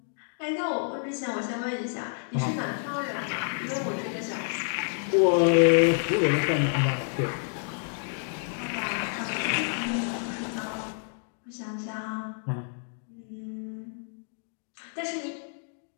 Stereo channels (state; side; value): silent; right; 59 dB below the other